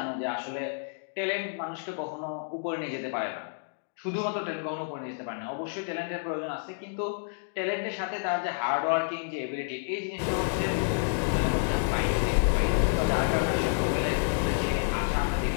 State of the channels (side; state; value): right; silent; digital silence